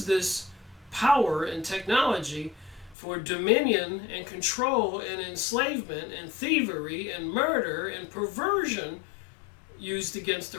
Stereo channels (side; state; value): right; drops out; at 3.0 s